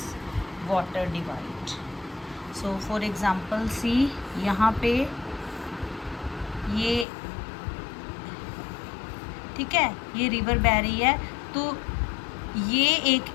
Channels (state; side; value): drops out; right; at 7.1 s